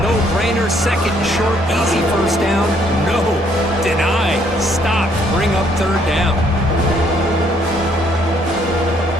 Second and short, easy first down. No, deny, stop, bring up third down.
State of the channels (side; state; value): both; normal; correlation 0.67